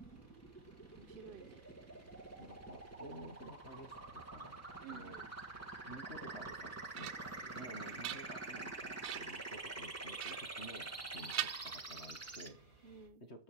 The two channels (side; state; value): left; quieter; 4.2 dB